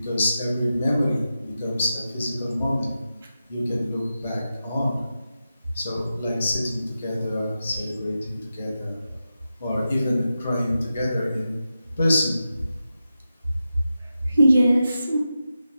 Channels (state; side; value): inverted; both; correlation -0.90